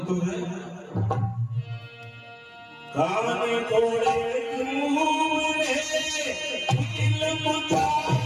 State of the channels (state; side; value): identical; both; correlation 1.00